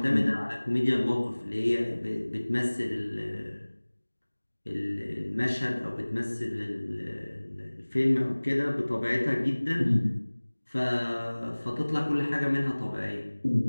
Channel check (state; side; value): inverted; both; correlation -1.00